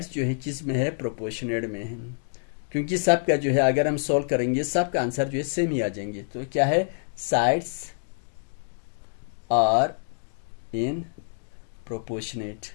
जो है किस में है, प्रोपोर्शनेट में है। क्योंकि सब का जो है अगर हम सॉल्व करेंगे सब का आंसर जो है सेम ही आ जाएंगे। तो क्या है, साइड्स आर इन प्रोपोर्शनेट।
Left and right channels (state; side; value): silent; right; digital silence